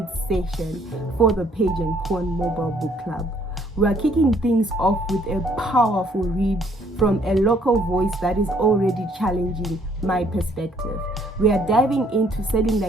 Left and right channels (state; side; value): normal; both; correlation 0.64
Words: session for the Page Pawn Mobile Book Club. We are kicking things off with a powerful read from a local voice that is already challenging my perspective. We are diving into Selling